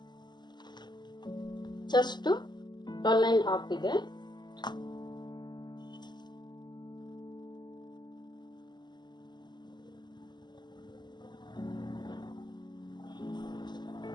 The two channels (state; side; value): late; right; 0.21 ms